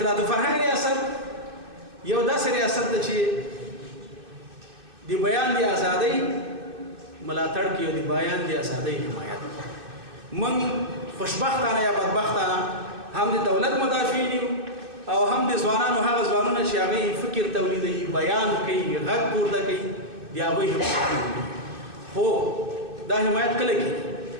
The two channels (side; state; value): left; late; 2.6 ms